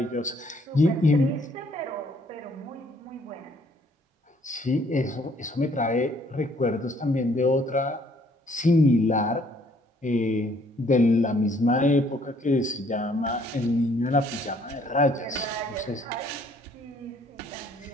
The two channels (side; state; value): both; normal; correlation 0.63